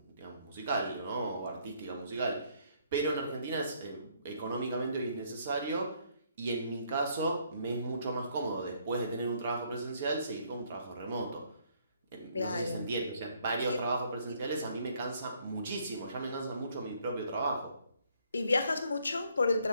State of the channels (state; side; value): inverted; both; correlation -0.67